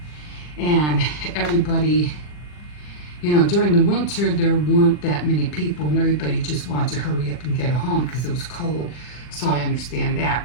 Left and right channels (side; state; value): right; late; 40 ms